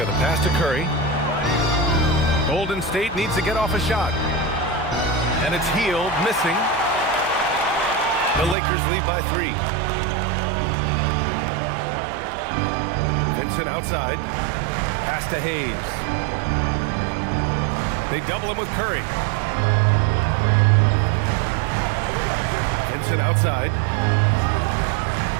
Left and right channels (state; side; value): drops out; left; at 8.6 s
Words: the pass to Curry. Golden State needs to get off a shot. And it's Hield, missing. The Lakers lead by 3. Vincent outside. Pass to Hayes. They double him with Curry. Vincent outside.